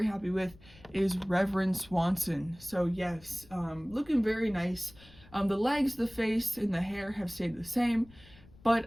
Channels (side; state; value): left; noise; rumble, 24 dB below the sound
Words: happy with is Reverend Swanson. So, yes, looking very nice. The legs, the face, and the hair have stayed the same,